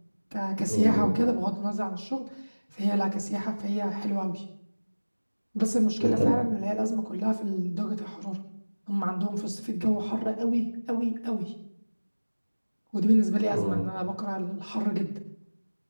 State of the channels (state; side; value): inverted; both; correlation -1.00